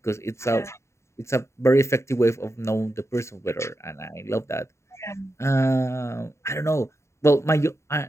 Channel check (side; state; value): right; late; 0.14 ms